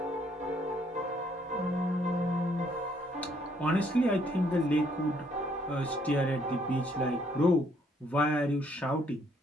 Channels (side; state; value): both; normal; correlation 0.67